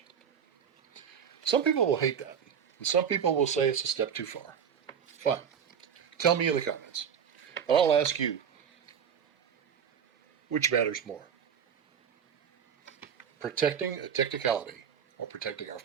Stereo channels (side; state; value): left; quieter; 7.8 dB